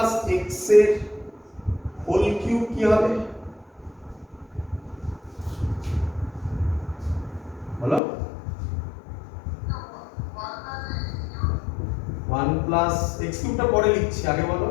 x এর হোল কিউব কি হবে? বলো। 1 প্লাস x কিউবটা পরে লিখছি, আগে বলো।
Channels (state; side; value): drops out; right; at 8.0 s